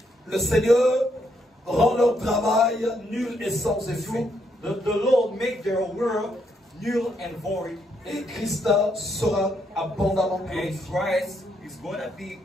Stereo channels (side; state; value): both; normal; correlation 0.76